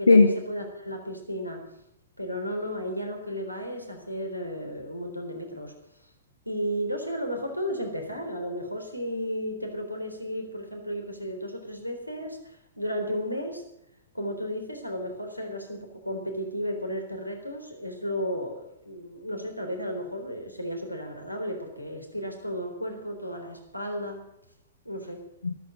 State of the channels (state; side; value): inverted; both; correlation -0.75